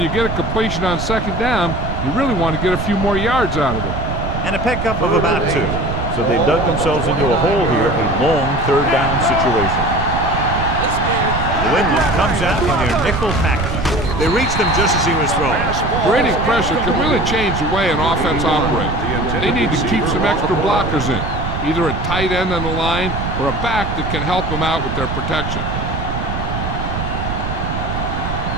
you get a completion on second down, you really want to get a few more yards out of it. And a pickup of about 2. So they dug themselves into a hole here, a long third down situation. New England comes out in their nickel package. They reach them just as he was throwing. Creating pressure can really change the way an offense operates. They need to keep some extra blockers in, either a tight end on the line or a back that can help them out with their protection.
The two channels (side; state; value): right; noise; rumble, 4 dB below the sound